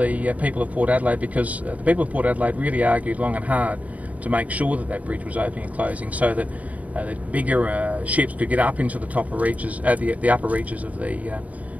people of Port Adelaide, because the people of Port Adelaide really argued long and hard to make sure that that bridge was opening and closing, so that the bigger ships could get up into the upper reaches of the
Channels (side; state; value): left; late; 0.070 ms